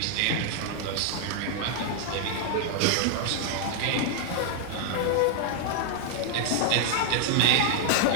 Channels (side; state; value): both; different; correlation 0.00